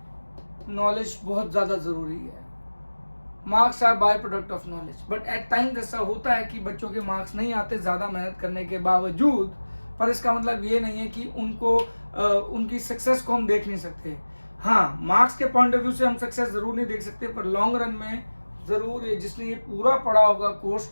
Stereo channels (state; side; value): inverted; both; correlation -1.00